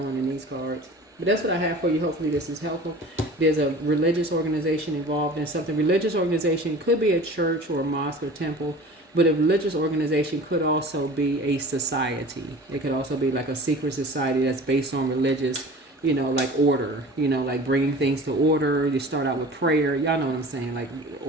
in these cards. But that's what I have for you. Hopefully this is helpful. There's a religious organization involved in something. Religious organization could be a church or a mosque or temple, but a religious organization could also be a society. It could also be like a secret society that's based on religious, like order, like bringing things to order. You start out with prayer. Y'all know what I'm saying, like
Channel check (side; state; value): both; normal; correlation 0.41